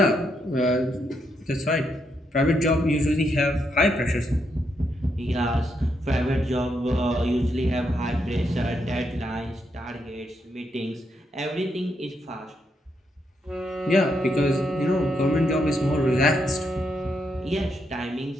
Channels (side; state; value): both; normal; correlation 0.79